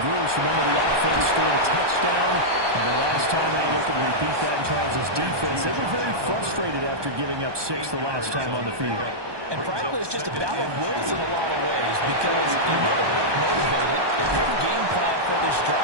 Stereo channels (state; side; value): late; left; 1.2 ms